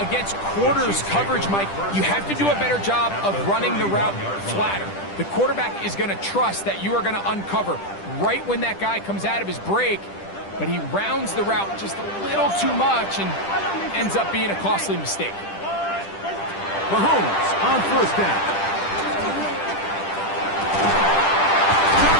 against quarters coverage, Mike, you have to do a better job of running the route flatter. The quarterback is going to trust that you are going to uncover right when that guy comes out of his break, but he rounds the route just a little too much and ends up being a costly mistake. Mahomes on first down. Got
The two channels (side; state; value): right; late; 10 ms